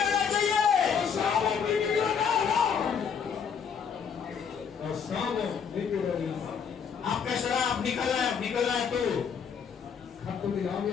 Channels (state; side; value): quieter; right; 6.9 dB